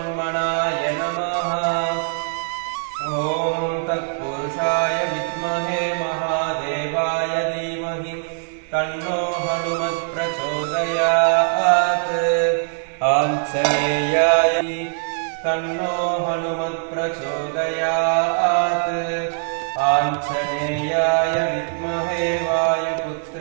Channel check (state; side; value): silent; left; 64 dB below the other